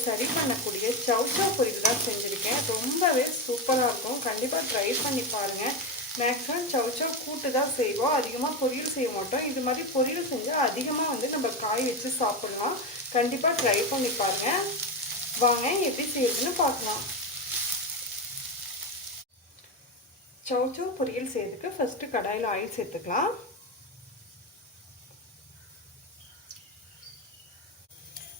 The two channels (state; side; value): normal; both; correlation 0.15